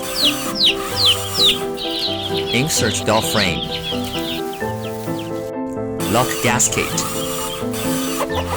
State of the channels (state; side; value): identical; both; correlation 1.00